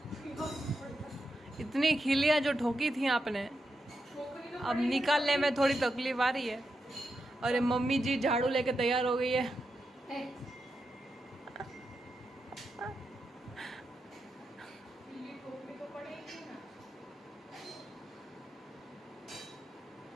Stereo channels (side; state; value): both; normal; correlation 0.87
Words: इतनी खिलियाँ जो ठोकी थी आपने अब निकालने में थोड़ी तकलीफ आ रही है। और ये मम्मी जी झाड़ू लेके तैयार हो गई है।